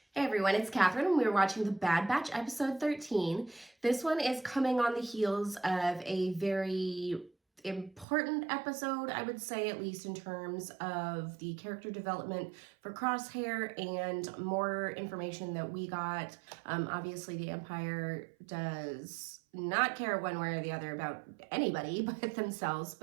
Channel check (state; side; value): drops out; left; at 8.1 s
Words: Hey everyone, it's Catherine and we're watching The Bad Batch episode 13. This one is coming on the heels of a very important episode, I would say, at least in terms of the character development for Crosshair and more information that we got. Obviously, the Empire does not care one way or the other about anybody but themselves,